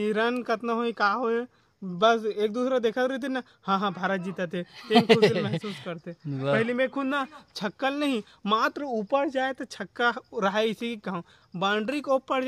रन कितना हो का हो बस एक दूसरा देखा रहे थे ना हाँ भारत जीता थे खुशी महसूस करते पहले में खुद ना छक्कल नहीं मात्र ऊपर जाए तो छक्का रहा इसी की कहूँ बाउंड्री को ऊपर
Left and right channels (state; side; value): identical; both; correlation 1.00